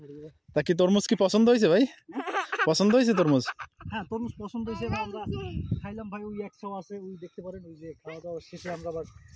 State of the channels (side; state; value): both; identical; correlation 1.00